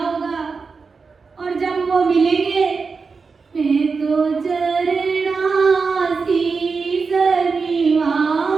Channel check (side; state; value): left; quieter; 4.8 dB